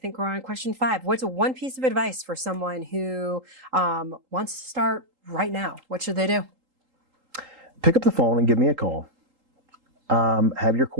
we're on question 5. What's one piece of advice for someone who wants to start right now? What should they do? Pick up the phone and give me a call. Have your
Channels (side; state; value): left; late; 3.8 ms